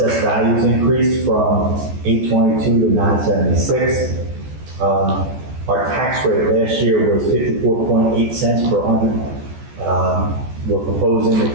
values increased from 822 to 976. Our tax rate last year was 54.8 cents per hundred. We're proposing the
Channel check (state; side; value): late; left; 14 ms